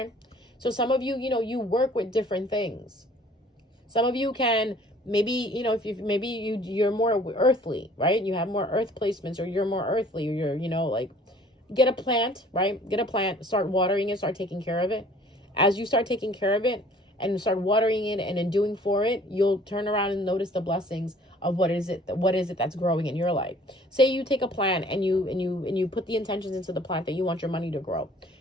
So some of you, you work with different things. Some of you can maybe, if you maybe you're more earthly, right? You have more earth placements, or you're more earthly, or you're, like, get a plant, right? Get a plant, start watering it, start taking care of it. As you start taking care of it and start watering it and in doing for it, you'll turn around and notice the blessings of what is it that's growing in your life. Say you take a plant and you put the intentions into the plant that you want your money to grow.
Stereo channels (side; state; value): both; normal; correlation 0.54